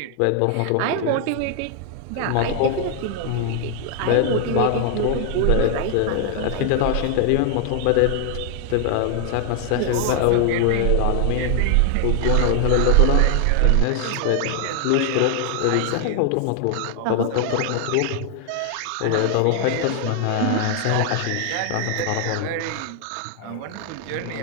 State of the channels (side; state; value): both; different; correlation 0.00